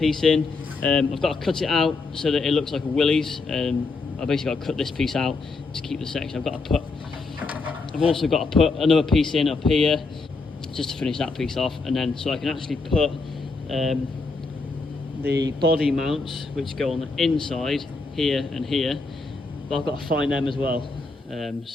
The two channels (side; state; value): right; quieter; 3.9 dB